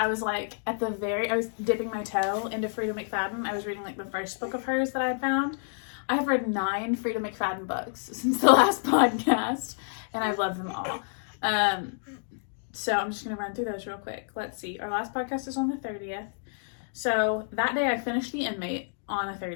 was like I was dipping my toe into Frida McFadden. I was reading like the first book of hers that I had found. I have read 9 Frida McFadden books since the last podcast, and I've loved them all. So I'm just gonna run through those real quick. Let's see. Our last podcast is on the 30th. So that day I finished The Inmate on the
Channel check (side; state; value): right; silent; digital silence